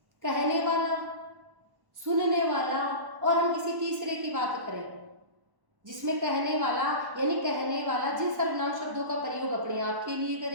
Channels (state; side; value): late; left; 1.1 ms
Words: कहने वाला, सुनने वाला और हम किसी तीसरे की बात करें, जिसमें कहने वाला यानी कहने वाला जिन सर्वनाम शब्दों का प्रयोग अपने आप के लिए